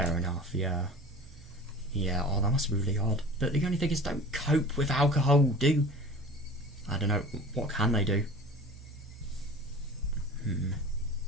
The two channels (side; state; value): both; normal; correlation 0.40